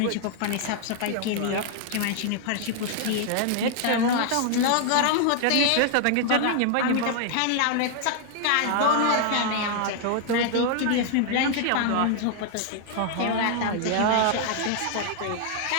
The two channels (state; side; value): different; both; correlation 0.00